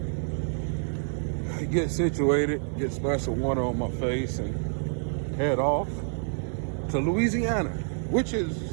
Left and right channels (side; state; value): left; silent; 59 dB below the other